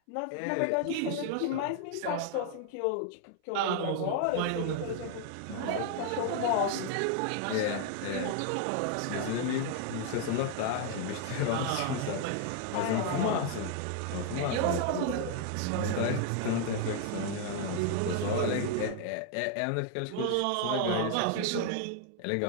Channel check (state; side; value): different; both; correlation 0.00